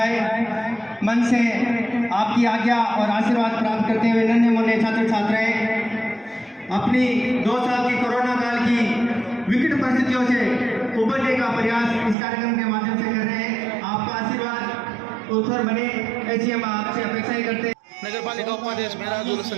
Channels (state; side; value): drops out; left; at 12.2 s